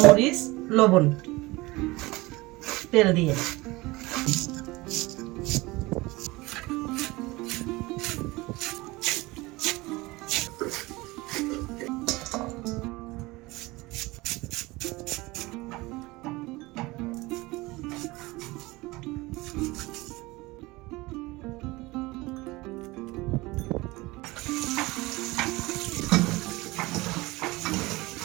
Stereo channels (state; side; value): quieter; left; 21.7 dB